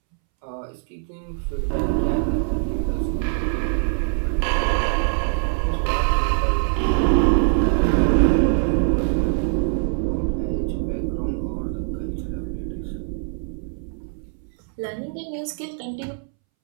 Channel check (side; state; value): left; silent; 64 dB below the other